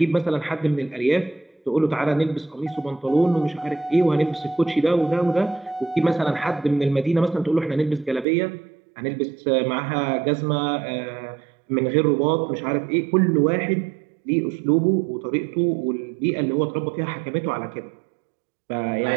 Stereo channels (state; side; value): drops out; left; at 8.2 s